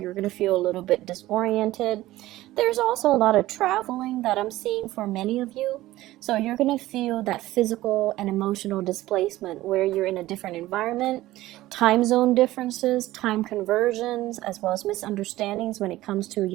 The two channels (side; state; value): left; quieter; 16.4 dB